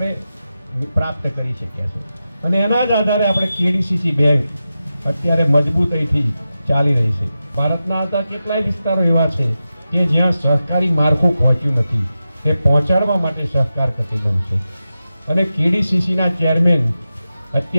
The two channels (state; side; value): inverted; both; correlation -0.92